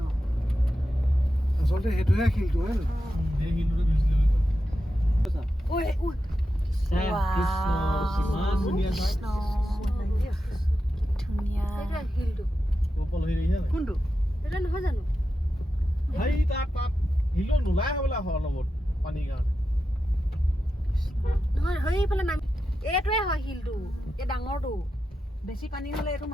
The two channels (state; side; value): normal; both; correlation 0.90